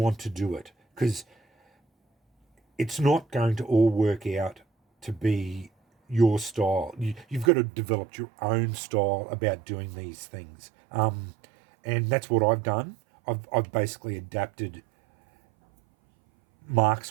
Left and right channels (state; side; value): drops out; left; at 7.5 s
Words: to do it, because it's not going to all work out to be your style. You've got to develop your own style about doing these things, and that's what I've done. I've basically adapted